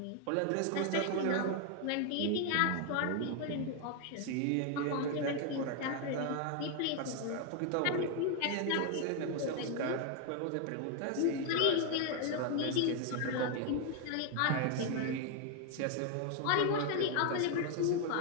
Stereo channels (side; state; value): both; different; correlation 0.01